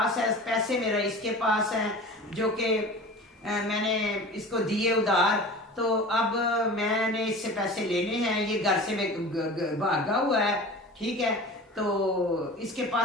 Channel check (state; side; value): normal; both; correlation 0.37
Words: है, पैसे मेरा इसके पास हैं, जो कि मैंने इसको दिए उधार। तो अब मैंने इससे पैसे लेने हैं, ये घर से भागा हुआ है। ठीक है, तो इसके